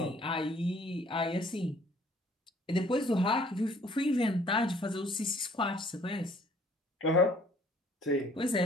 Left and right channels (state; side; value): normal; both; correlation 0.59